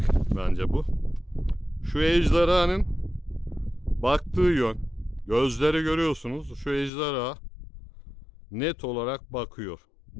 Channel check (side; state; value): right; drops out; at 6.9 s